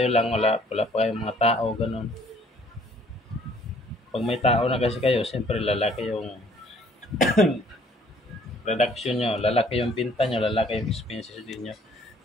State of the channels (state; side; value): normal; both; correlation 0.60